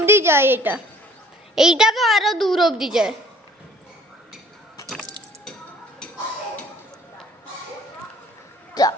যায়, এইটা তো আরো দূর অবধি যায়।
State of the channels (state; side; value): normal; both; correlation 0.55